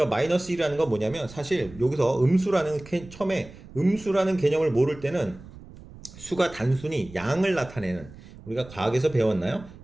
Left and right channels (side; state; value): right; noise; rumble, 18 dB below the sound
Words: 마이너스 1이라는 건 뭐냐면 사실 여기서 처음에 음수라는 개념을 모를 때는 수가 단순히 양을 나타내는 우리가 과학에서 배웠나요?